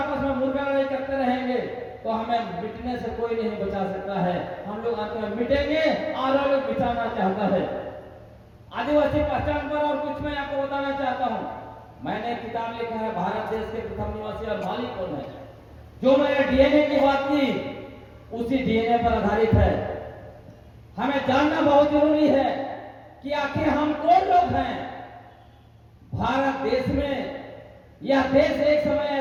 में मुर्गा लड़ाई करते रहेंगे, तो हमें मिटने से कोई नहीं बचा सकता है। हम लोग अंत में मिटेंगे और वो लोग मिटाना चाहता है। आदिवासी पहचान पर और कुछ मैं आपको बताना चाहता हूँ। मैंने किताब लिखा है भारत देश के प्रथम निवासी और मालिक कौन है। जो मैंने डीएनए की बात की उसी डीएनए पर आधारित है। हमें जानना बहुत जरूरी है कि आखिर हम कौन लोग हैं। भारत देश में, यह देश एक समय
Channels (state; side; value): identical; both; correlation 1.00